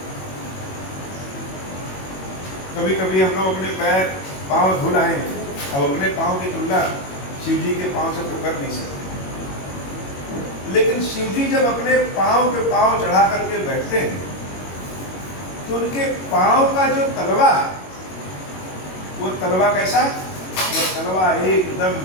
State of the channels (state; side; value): late; right; 21 ms